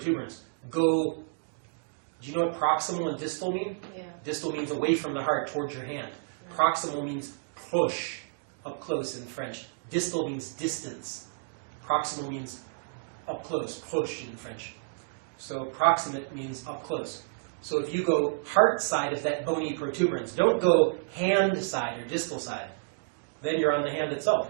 Do you know what proximal and distal mean? Yeah. Distal means away from the heart, towards your hand. Proximal means push, up close in French. Distal means distance. Proximal means up close, push in French. So proximate means up close. So if you go heart side of that bony protuberance, don't go hand side or distal side. Then you're on the hand itself.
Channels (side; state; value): left; silent; digital silence